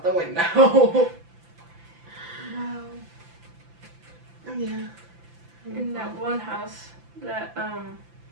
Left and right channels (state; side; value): late; left; 5.9 ms